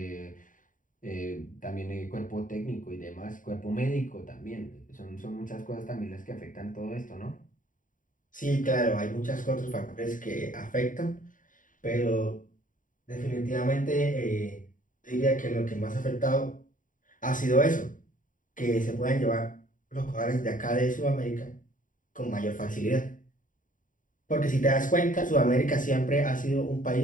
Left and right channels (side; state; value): right; late; 0.38 ms